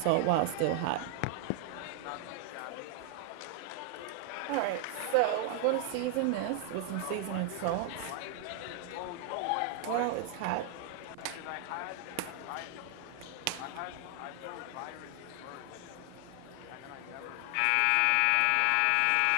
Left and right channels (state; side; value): different; both; correlation 0.00